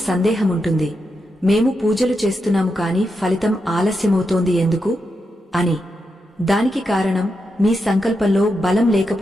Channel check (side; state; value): both; normal; correlation 0.86